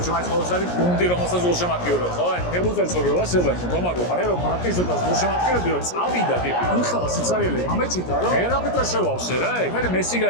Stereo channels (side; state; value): right; late; 17 ms